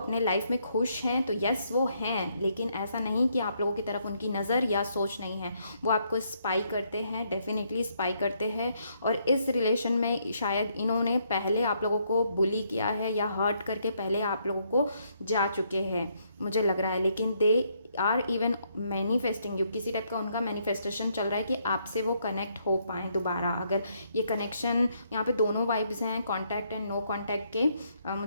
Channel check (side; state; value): both; inverted; correlation -0.73